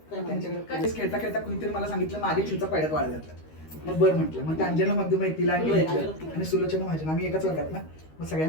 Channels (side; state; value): right; late; 13 ms